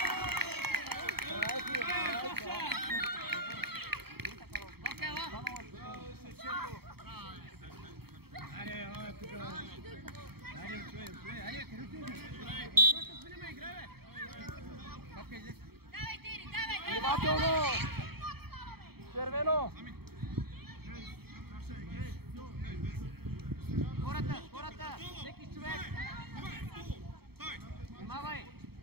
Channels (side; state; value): left; late; 0.96 ms